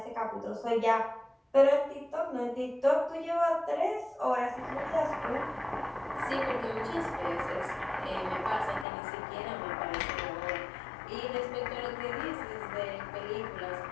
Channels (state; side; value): drops out; right; at 8.8 s